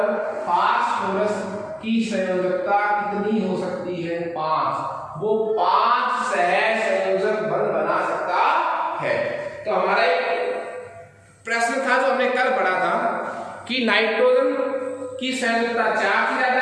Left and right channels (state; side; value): identical; both; correlation 1.00